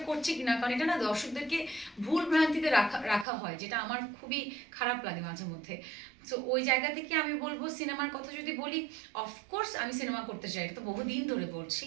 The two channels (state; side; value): drops out; left; at 3.2 s